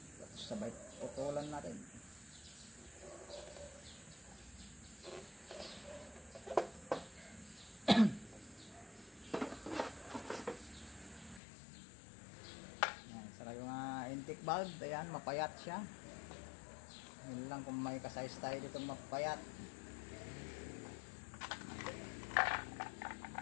Sabay putulan natin. Ayan, saka yung intake valve, ayan, mapayat siya. Yun lang kung may kasize tayo dito mapayat.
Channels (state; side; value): drops out; right; at 11.4 s